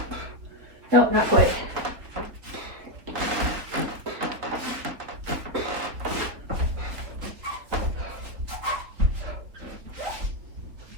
No, not quite.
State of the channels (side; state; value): left; late; 3.6 ms